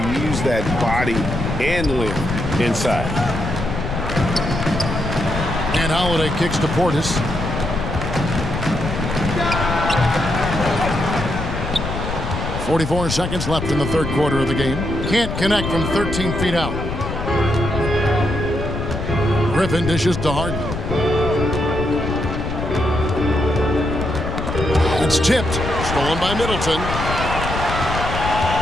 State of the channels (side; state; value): left; noise; rumble, 5 dB below the sound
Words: that body and length inside. And Holiday kicks to Portis. .44 seconds left in the third quarter of the game. Can't connect from 13 feet out. Griffin dishes to Harden. It's tipped. Stolen by Middleton.